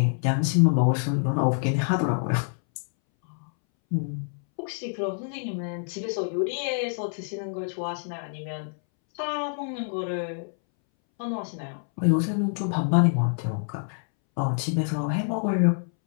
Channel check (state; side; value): silent; right; 60 dB below the other